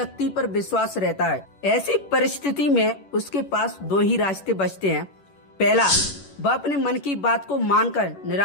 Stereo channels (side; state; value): right; late; 11 ms